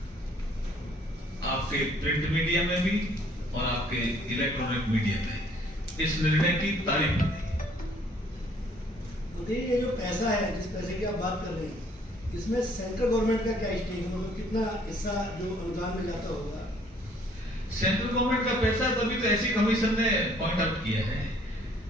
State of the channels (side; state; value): both; normal; correlation 0.61